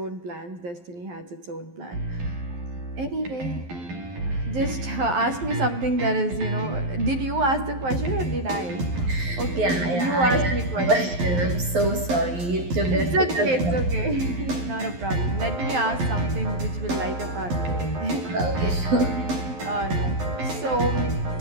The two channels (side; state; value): left; late; 11 ms